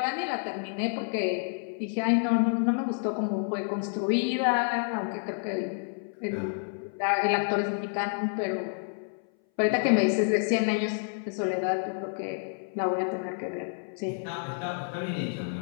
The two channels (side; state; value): right; silent; 59 dB below the other